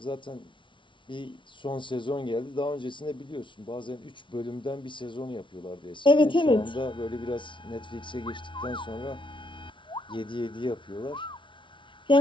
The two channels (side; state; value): right; late; 0.24 ms